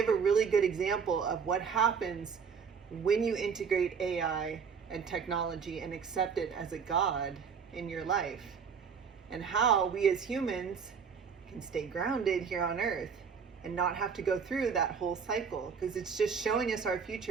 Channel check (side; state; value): left; quieter; 6.3 dB